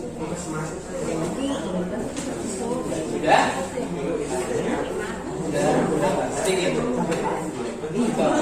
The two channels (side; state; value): both; identical; correlation 1.00